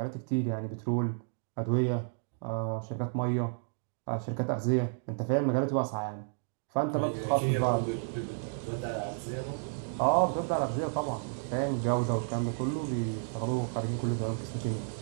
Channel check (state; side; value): silent; left; digital silence